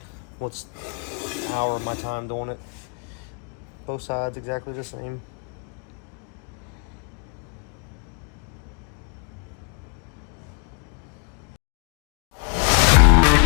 what's an hour of my time doing it. Both sides exactly the same.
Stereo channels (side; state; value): right; quieter; 37.8 dB